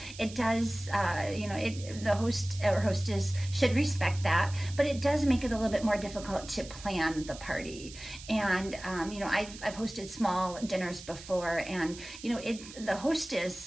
it does, the host or hostess should respect that, but it does make it a little bit more difficult to plan the party. And, I've hosted small dinners before, and, the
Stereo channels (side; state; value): right; noise; hiss, 15 dB below the sound